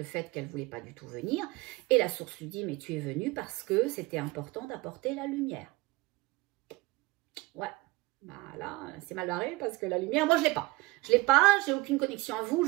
fait qu'elle ne voulait pas du tout venir. Et la source lui dit, mais tu es venue parce que c'était important d'apporter la lumière. Ouais, bah là, c'est mal barré parce que la lumière, moi, je ne l'ai pas. Je ne l'ai pas, j'ai aucune connexion à vous,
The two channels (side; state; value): left; quieter; 22.5 dB